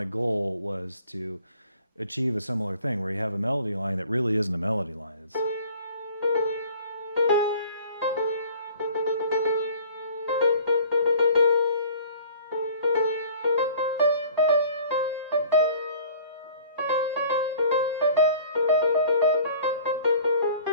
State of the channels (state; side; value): inverted; both; correlation -0.50